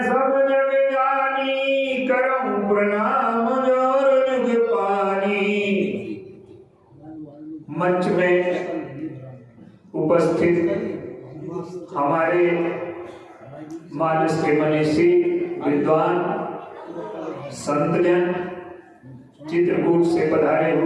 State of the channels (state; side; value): identical; both; correlation 1.00